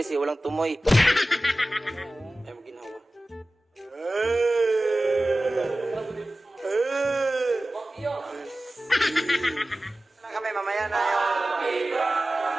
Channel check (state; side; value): normal; both; correlation 0.96